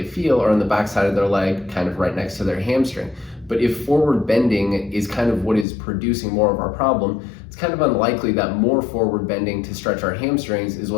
feel are on the backside of their leg, kind of right next to their hamstring. But if forward bending is kind of what is producing more of our problem, it's kind of unlikely that more forward bending to stretch our hamstrings is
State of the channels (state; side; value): drops out; right; at 5.7 s